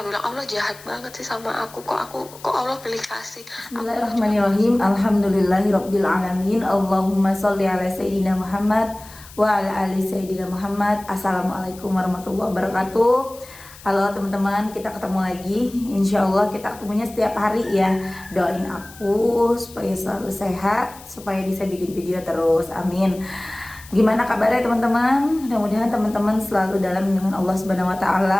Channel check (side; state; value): left; noise; hiss, 20 dB below the sound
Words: bilang, Allah jahat banget sih sama aku. Kok Allah pilih kasih aku. Bismillahirrahmanirrahim. Alhamdulillahirabbil alamin. Allahumma sholli ala sayyidina Muhammad wa ala ali sayyidina Muhammad. Assalamualaikum warahmatullahi wabarakatuh. Halo teman-teman, kita ketemu lagi. Insya Allah kita ketemunya setiap hari ya. Doain aku supaya selalu sehat, supaya bisa bikin video terus. Amin. Gimana kabarnya teman-teman? Mudah-mudahan teman-teman selalu dalam lindungan Allah Subhanahu wa